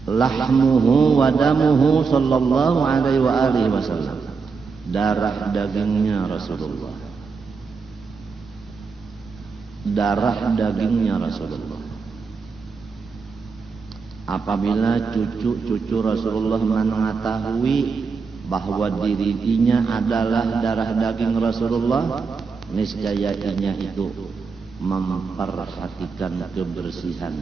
Lahmuhu wa damuhu sallallahu alaihi wa alihi wasallam. Darah dagingnya Rasulullah. Darah dagingnya Rasulullah. Apabila cucu-cucu Rasulullah mengetahui bahwa dirinya adalah darah daging Rasulullah, niscaya ianya itu memperhatikan kebersihan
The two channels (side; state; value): left; quieter; 5.1 dB